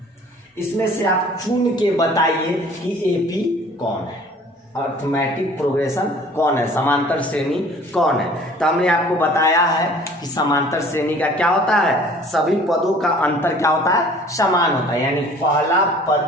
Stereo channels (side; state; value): both; normal; correlation 0.51